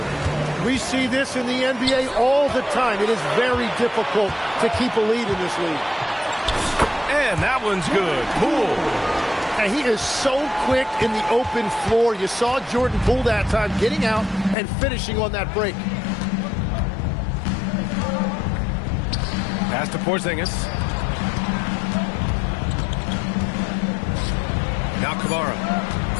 We see this in the NBA all the time. It is very difficult to keep a lead in this league. And that one's good. Poole. And he is so quick in the open floor. You saw Jordan Poole that time getting out and finishing on that break. Pass to Porzingis. Now Kamara.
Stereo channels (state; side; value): drops out; right; at 14.6 s